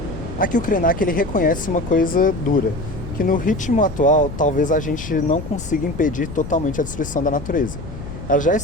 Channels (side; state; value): left; noise; rumble, 10 dB below the sound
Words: Aqui o Krenak ele reconhece uma coisa dura, que no ritmo atual talvez a gente não consiga impedir totalmente a destruição da natureza. Ela já